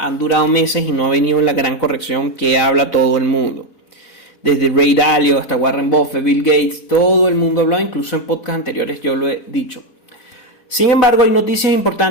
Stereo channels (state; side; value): late; right; 4.0 ms